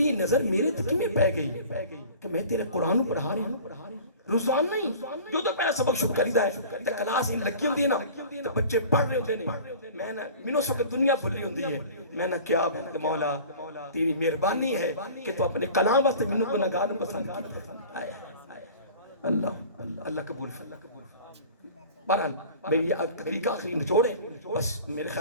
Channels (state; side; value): inverted; both; correlation -0.42